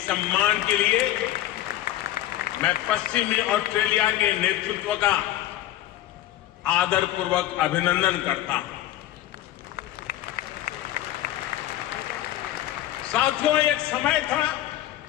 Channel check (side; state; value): right; quieter; 13.8 dB